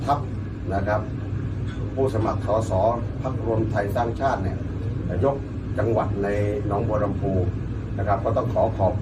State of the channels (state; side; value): identical; both; correlation 1.00